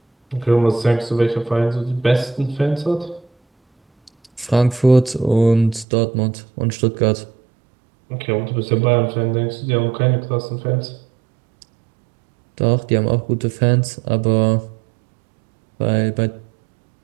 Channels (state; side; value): drops out; left; at 5.9 s